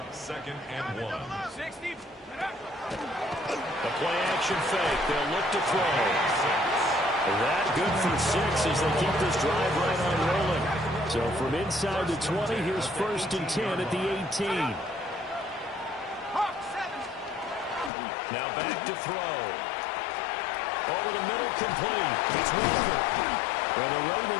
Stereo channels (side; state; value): right; drops out; at 17.9 s